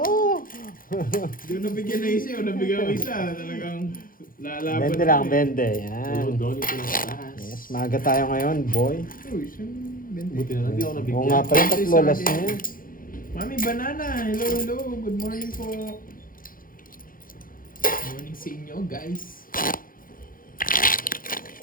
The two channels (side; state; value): right; late; 0.41 ms